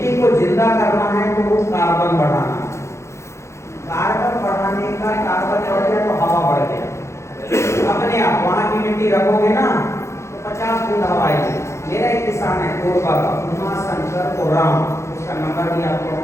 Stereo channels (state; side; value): late; right; 0.14 ms